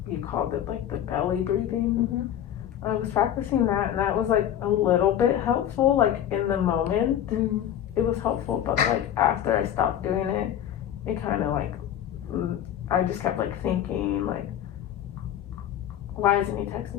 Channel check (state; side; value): quieter; right; 10.5 dB